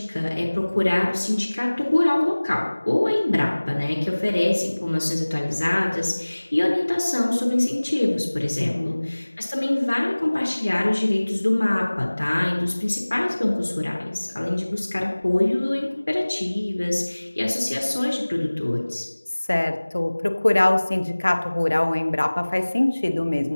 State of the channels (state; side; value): inverted; both; correlation -1.00